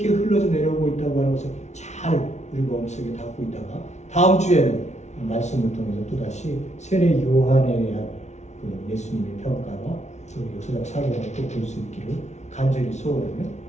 흘러져 내려오고 있다고 하는 것을 잘 우리 마음속에 담고 있다가 다음 주에는 말씀을 통해서 또다시 세례 요한에 대한 그 예수님의 평가와 또 역사적 사고를 또 볼 수 있기를 간절히 소원하며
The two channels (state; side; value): late; right; 0.32 ms